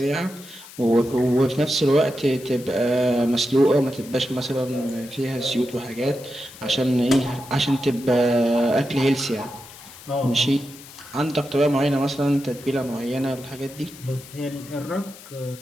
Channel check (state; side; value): noise; left; hiss, 18 dB below the sound